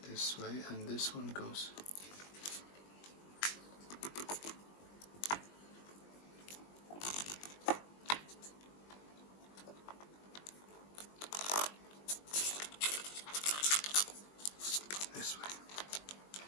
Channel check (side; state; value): right; late; 20 ms